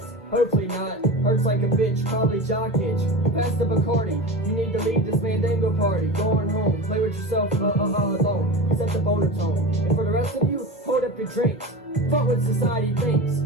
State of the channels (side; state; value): both; normal; correlation 0.28